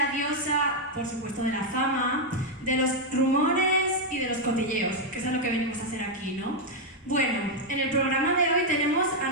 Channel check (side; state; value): both; normal; correlation 0.00